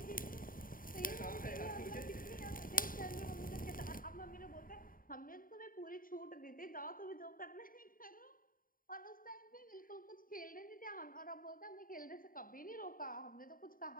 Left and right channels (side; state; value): right; late; 0.41 ms